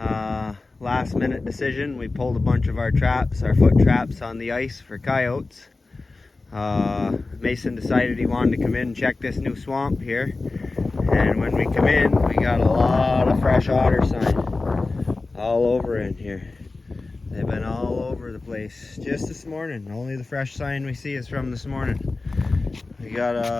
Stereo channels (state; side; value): quieter; right; 3.5 dB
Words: Last minute decision. We pulled a bunch of our traps, our foot traps on the ice for coyotes. Mason decided he wanted to come in and check this new swamp here. And when we come in, we got a lot of fresh otter sign all over in here. They've been all over the place just this morning. Only the fresh sign we see is from this morning. We got